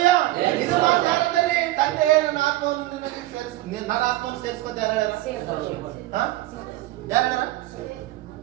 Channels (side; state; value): left; quieter; 16.9 dB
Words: ಇದು ಮಾತು ಯಾರಂದ್ರೆ ತಂದೆ ನನ್ನ ಆತ್ಮವನ್ನು ನಿನಗೆ ಸೇರಿಸಿ ನನ್ನ ಆತ್ಮವನ್ನು ಸೇರಿಸಿಕೊತ ಯಾರು ಹೇಳ್ಯಾರ? ಯಾರು ಹೇಳ್ಯಾರ?